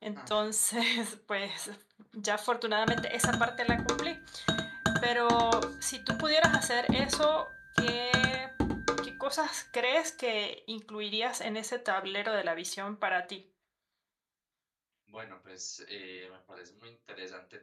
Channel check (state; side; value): identical; both; correlation 1.00